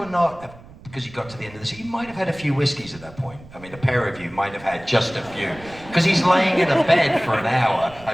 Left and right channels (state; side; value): noise; right; rumble, 20 dB below the sound